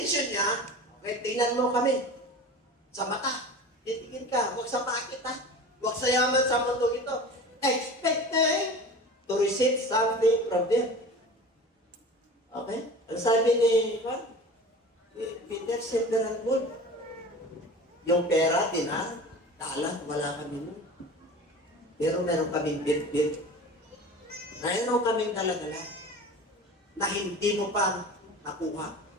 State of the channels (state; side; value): normal; both; correlation 0.36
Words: niya, okay, tingnan mo kami. Sa mata. Titigin ka. Huwag sa pakit ha. Huwag sa yaman sa mundo ito. Expecting to receive something from them. Okay? Ang sabi ni Peter, silver and gold. Yung pera, dinar, talang, wala kami nun. Pero meron kaming bit-bit. Meron kaming dala-dala na hindi mo pa nakuha.